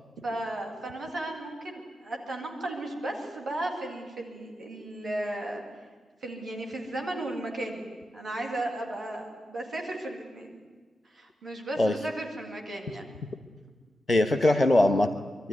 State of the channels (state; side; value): normal; both; correlation 0.89